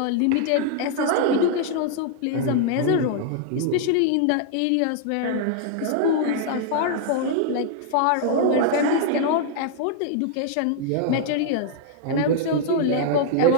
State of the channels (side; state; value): both; different; correlation 0.00